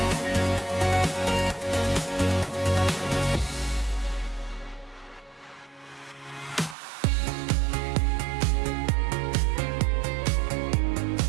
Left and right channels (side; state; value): left; drops out; at 6.8 s